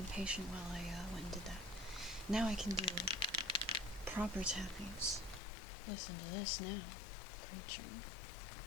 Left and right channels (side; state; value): right; drops out; at 5.4 s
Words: patient while I went and did that. Now I can do proper tappings. Listen to this now, creature.